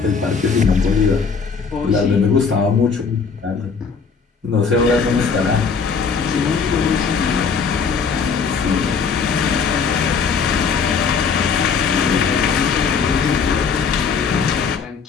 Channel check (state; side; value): quieter; right; 5.6 dB